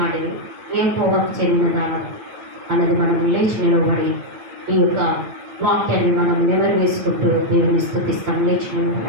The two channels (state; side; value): late; left; 8.7 ms